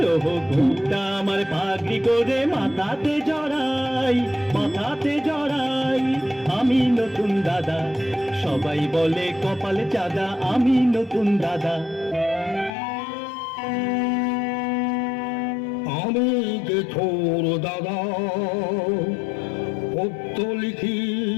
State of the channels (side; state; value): right; drops out; at 12.7 s